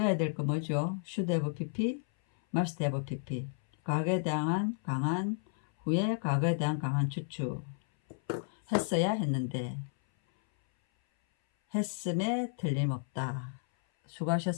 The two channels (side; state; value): right; silent; 56 dB below the other